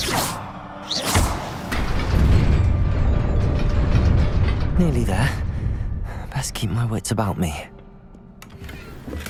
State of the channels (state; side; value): identical; both; correlation 1.00